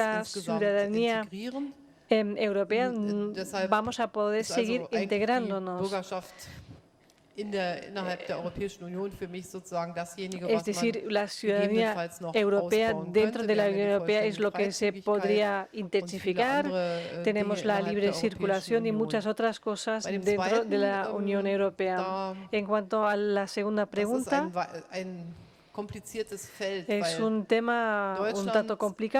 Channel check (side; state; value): both; identical; correlation 1.00